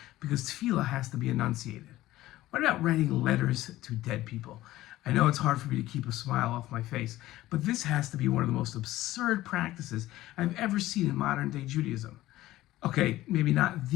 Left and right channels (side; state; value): right; quieter; 15.9 dB